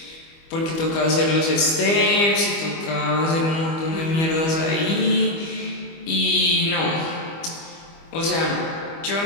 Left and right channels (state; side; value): late; right; 25 ms